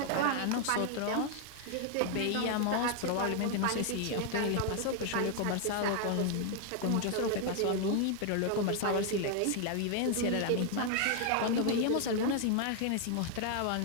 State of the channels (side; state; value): both; different; correlation 0.01